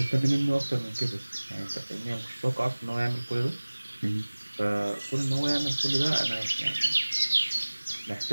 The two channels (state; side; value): inverted; both; correlation -1.00